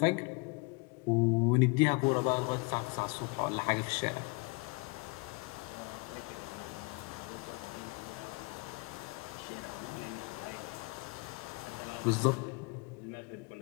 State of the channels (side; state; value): right; quieter; 28.5 dB